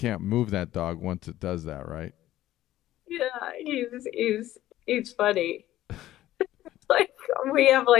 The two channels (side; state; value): right; quieter; 14.3 dB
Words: move that dog once it does that, right? yeah, he's funny. Like we have